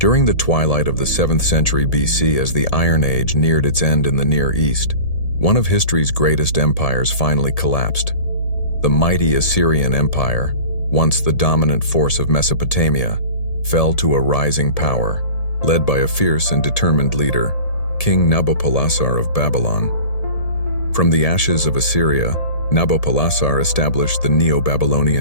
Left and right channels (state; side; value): late; right; 1.7 ms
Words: During the twilight of the 7th century BC, as the Iron Age neared its end in the Near East, one of history's greatest empires finally collapsed. The mighty Assyrian Empire, once the dominant force of Mesopotamia, fell to a rising power, led by a fierce and determined leader, King Nabopolassar of Babylon. From the ashes of Assyria, Nabopolassar established the